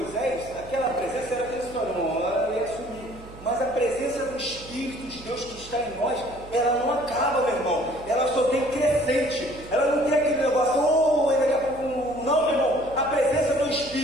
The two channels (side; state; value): right; noise; hum, 18 dB below the sound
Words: aquela presença era transitória, não, ela ia sumir. Mas a presença do Espírito de Deus que está em nós, ela não acaba, meu irmão. Ela só tem crescente. Ela não tem aquele negócio, daqui a pouco, não, meu irmão. A presença do